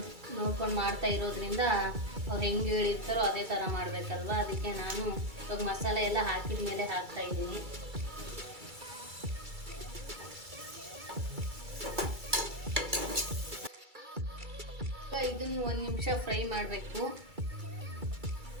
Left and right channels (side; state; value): left; late; 2.3 ms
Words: ನೋಡ್ಕೊಂಡು ಮಾಡ್ತಾ ಇರೋದ್ರಿಂದ ಅವ್ರು ಹೆಂಗೆ ಹೇಳಿರ್ತಾರೋ ಅದೇ ಥರ ಮಾಡಬೇಕಲ್ವ. ಅದಕ್ಕೆ ನಾನು ಇವಾಗ ಮಸಾಲೆ ಎಲ್ಲ ಹಾಕಿದ ಮೇಲೆ ಹಾಕ್ತಾ ಇದ್ದೀನಿ. ಇದನ್ನು 1 ನಿಮಿಷ ಫ್ರೈ ಮಾಡಬೇಕು.